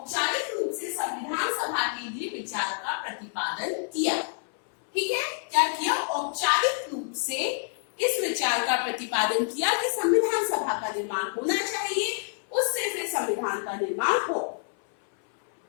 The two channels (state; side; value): silent; right; 60 dB below the other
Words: रूप से संविधान सभा के लिए विचार का प्रतिपादन किया, ठीक है, क्या किया, औपचारिक रूप से इस विचार का प्रतिपादन किया कि संविधान सभा का निर्माण होना चाहिए, उससे फिर संविधान का निर्माण हो।